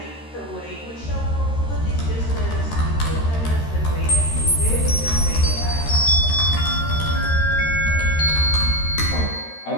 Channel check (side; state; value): right; late; 13 ms